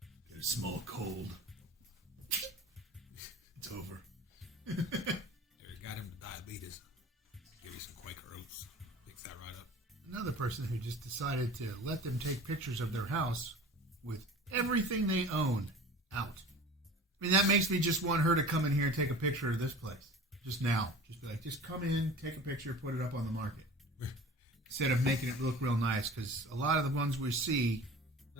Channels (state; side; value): normal; both; correlation 0.40